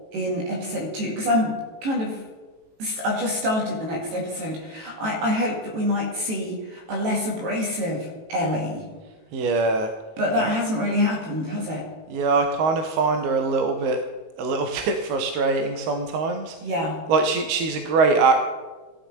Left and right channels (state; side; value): late; left; 18 ms